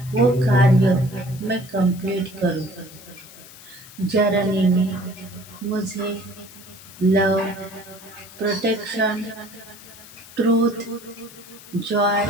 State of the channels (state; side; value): noise; left; hiss, 19 dB below the sound